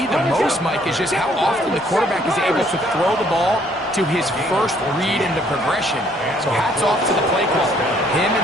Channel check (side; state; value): both; normal; correlation 0.64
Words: the most, Mike, is just how often the quarterback is able to throw the ball to his first read in the progression. So hats off to the play call. Him